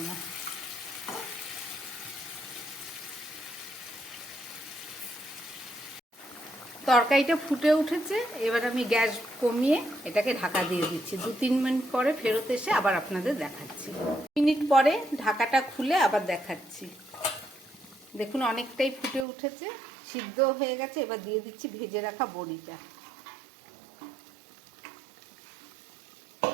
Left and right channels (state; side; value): drops out; left; at 19.2 s